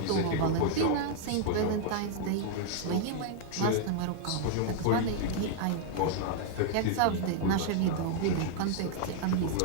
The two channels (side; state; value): both; different; correlation -0.01